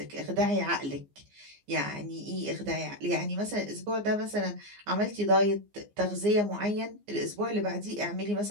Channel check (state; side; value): late; left; 15 ms